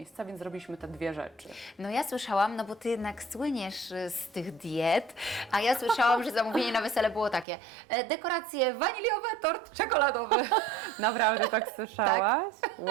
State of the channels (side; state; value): left; drops out; at 7.5 s